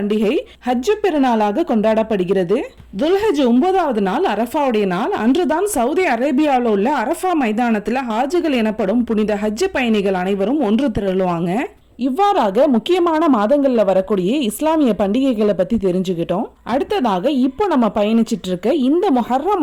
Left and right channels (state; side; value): identical; both; correlation 1.00